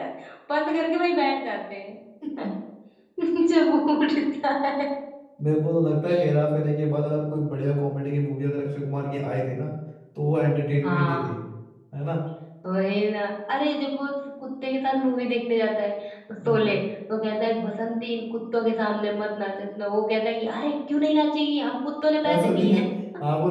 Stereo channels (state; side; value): identical; both; correlation 1.00